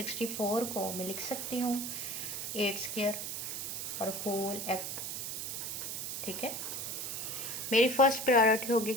को मैं लिख सकती हूँ 8 स्क्वायर और होल x। ठीक है, मेरी फर्स्ट प्रायोरिटी होगी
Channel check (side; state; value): right; noise; hiss, 4 dB below the sound